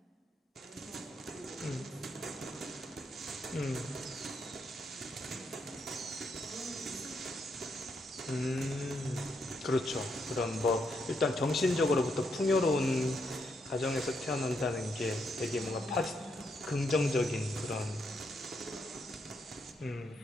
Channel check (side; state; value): both; normal; correlation 0.78